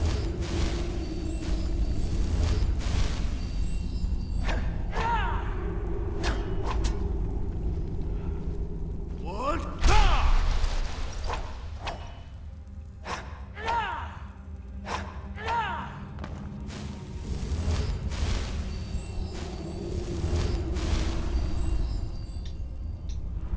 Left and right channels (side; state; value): both; identical; correlation 1.00